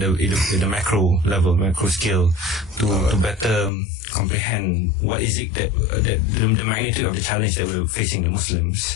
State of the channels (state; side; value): drops out; right; at 3.7 s